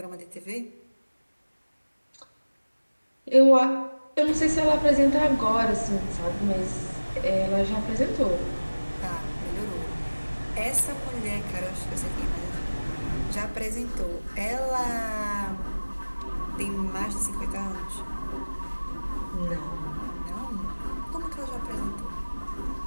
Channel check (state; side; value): inverted; both; correlation -1.00